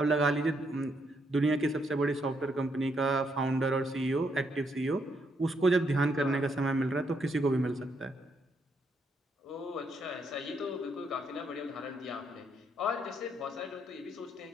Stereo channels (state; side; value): normal; both; correlation 0.75